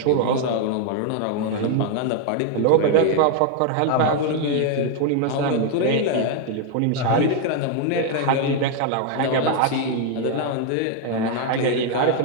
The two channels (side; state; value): both; different; correlation 0.01